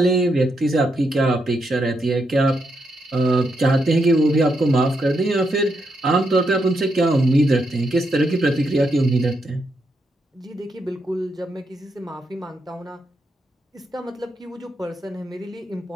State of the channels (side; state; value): both; normal; correlation 0.81